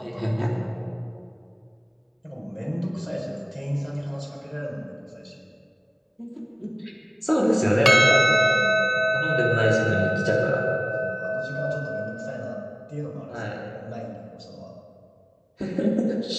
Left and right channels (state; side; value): identical; both; correlation 1.00